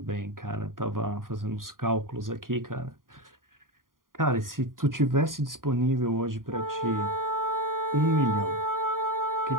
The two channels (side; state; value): left; late; 0.90 ms